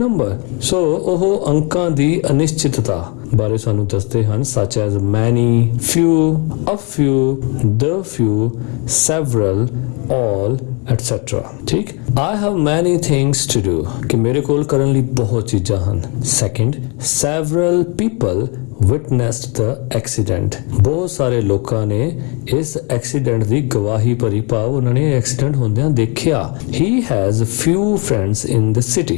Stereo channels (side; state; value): right; quieter; 32.8 dB